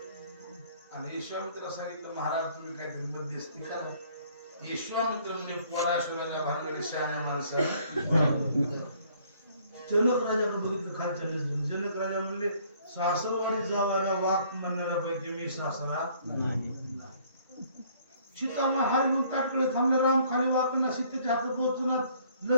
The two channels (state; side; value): inverted; both; correlation -0.61